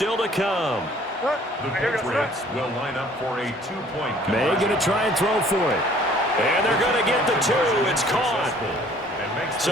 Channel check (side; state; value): both; normal; correlation 0.56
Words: to come. The Patriots will line up for a 2-point conversion. May going to try and throw for it. And they're going to get the 2. It's caught.